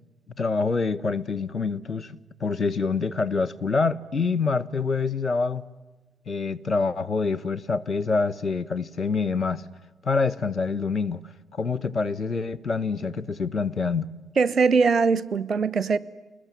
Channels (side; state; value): both; normal; correlation 0.74